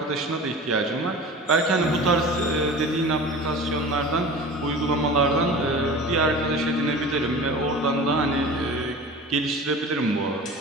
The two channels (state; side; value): normal; both; correlation 0.37